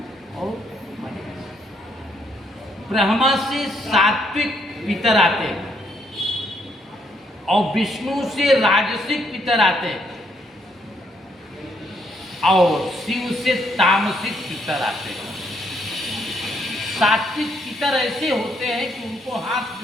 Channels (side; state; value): both; normal; correlation 0.73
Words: और महेश। ब्रह्मा से सात्विक पितर आते हैं और विष्णु से राजसिक पितर आते हैं और शिव से तामसिक पितर आते हैं। सात्विक पितर ऐसे होते हैं कि उनको हाथ